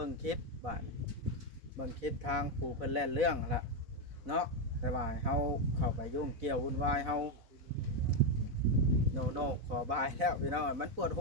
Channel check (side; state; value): left; late; 4.1 ms